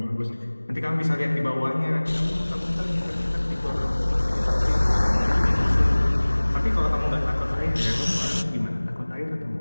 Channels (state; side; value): inverted; both; correlation -1.00